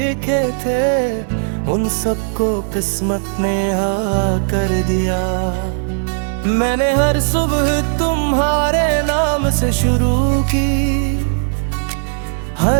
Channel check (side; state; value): left; silent; digital silence